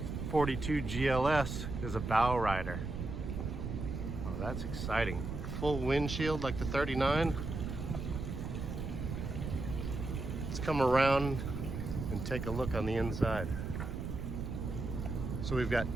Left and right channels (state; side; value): noise; right; rumble, 5 dB below the sound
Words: 42 GLS is a bow rider. Oh, that's exciting. Full windshield like the 39. Let's come around and take a look on the inside. So we've got